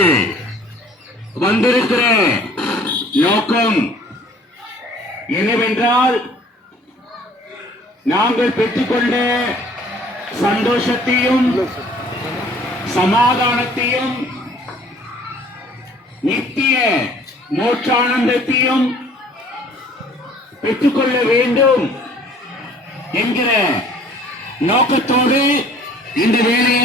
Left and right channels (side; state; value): both; normal; correlation 0.54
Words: வந்திருக்கிற நோக்கம் என்னவென்றால், நாங்கள் பெற்றுக்கொண்ட சந்தோஷத்தையும் சமாதானத்தையும் நித்திய மோட்சானந்தத்தையும் பெற்றுக்கொள்ள வேண்டும் என்கிற நோக்கத்தோடு இந்த